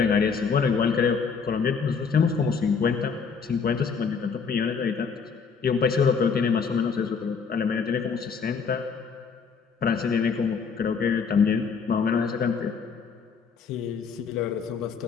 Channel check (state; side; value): quieter; right; 5.7 dB